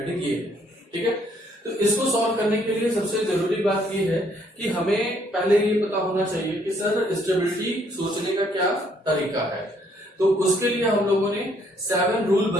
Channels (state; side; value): normal; both; correlation 0.66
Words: ये है, ठीक है। तो इसको सॉल्व करने के लिए सबसे जरूरी बात ये है कि हमें पहले ये पता होना चाहिए कि सर स्टेबिलिटी सोचने का क्या तरीका है। तो उसके लिए हम लोगों ने 7 रूल